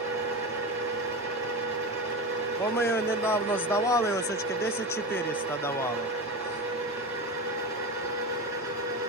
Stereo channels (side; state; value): both; normal; correlation 0.23